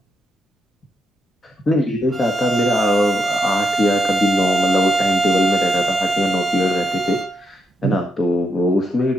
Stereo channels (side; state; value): both; normal; correlation 0.81